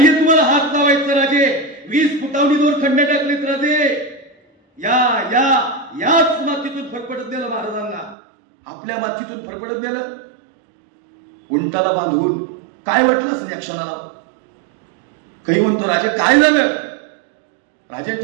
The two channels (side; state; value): left; drops out; at 8.2 s